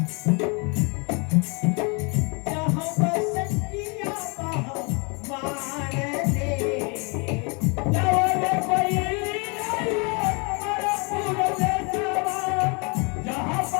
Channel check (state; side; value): quieter; right; 32.3 dB